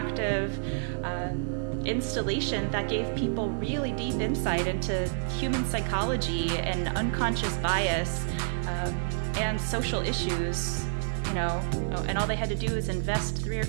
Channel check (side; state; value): left; silent; digital silence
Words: installation that gave people really deep insight into human psychology and unconscious bias and social issues, you know, and all they had to do was invest 3 or